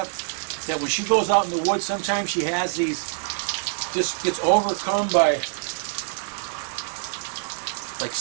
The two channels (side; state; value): left; silent; digital silence